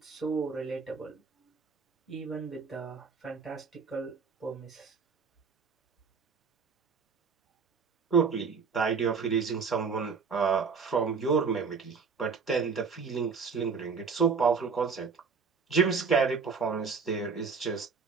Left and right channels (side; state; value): left; quieter; 5.4 dB